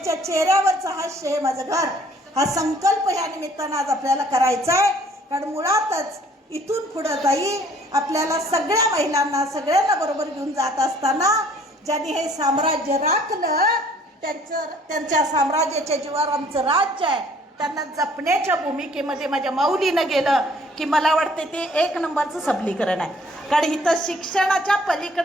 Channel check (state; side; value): normal; both; correlation 0.58